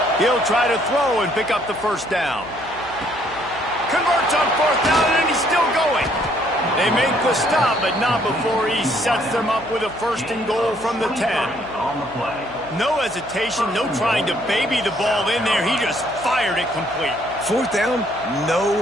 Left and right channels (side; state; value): left; noise; hum, 20 dB below the sound